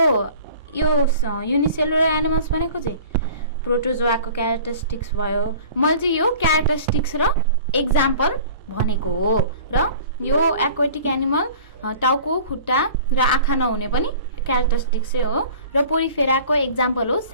युनिसेलुलर एनिमल्स भनेको चाहिँ प्रोटोजोआको क्यारेक्टरिस्टिक्स भयो मैले चाहिँ यो क्यारेक्टरिस्टिक्स र एक्जाम्पल भनेको हो र यो एक्वाटिक एनिमल टाउको खुट्टा र आँखा नहुने पनि क्यारेक्टरिस्टिक्सै हो र पोरिफेराको एक्जाम्पल हो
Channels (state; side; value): inverted; both; correlation -0.45